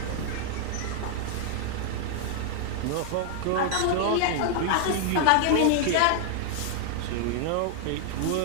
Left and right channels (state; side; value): different; both; correlation 0.00